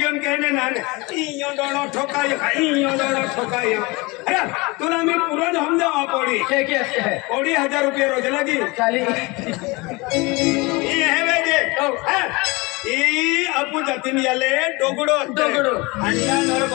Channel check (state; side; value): quieter; right; 25.1 dB